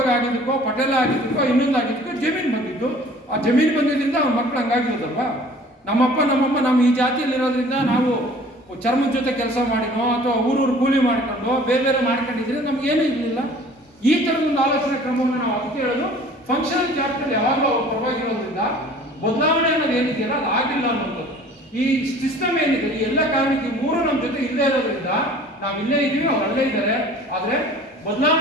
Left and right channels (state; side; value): normal; both; correlation 0.49